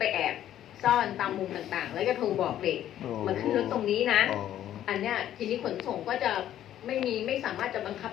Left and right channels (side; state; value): right; quieter; 11.7 dB